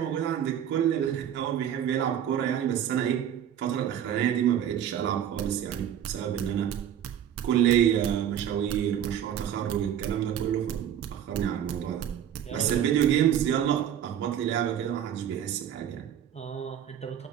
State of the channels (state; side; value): quieter; left; 9.8 dB